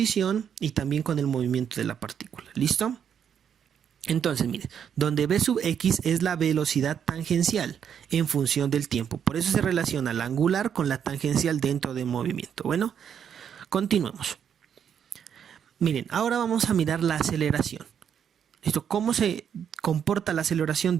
y también con el movimiento de la partícula. ¿Listo? Entonces, miren, donde V sub X es la velocidad tangencial en función del tiempo. Por eso se relaciona la angular con la tangencial dentro del movimiento. Bueno, continuemos. Miren, ahora vamos a mirar la aceleración. ¿Listo? ¿Cómo se comporta la aceleración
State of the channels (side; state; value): left; quieter; 8.3 dB